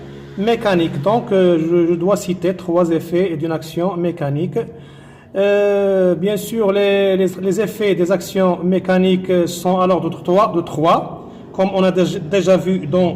mécanique. Donc, je dois citer 3 effets d'une action mécanique. Bien sûr, les effets des actions mécaniques sont à l'ordre de 3, comme on a déjà vu dans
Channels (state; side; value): identical; both; correlation 1.00